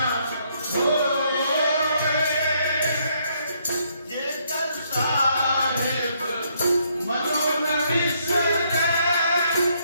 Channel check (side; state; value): both; inverted; correlation -0.71